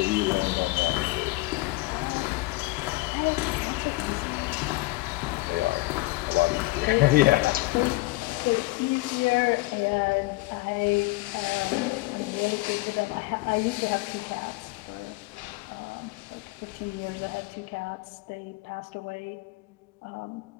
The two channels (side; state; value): right; quieter; 21.2 dB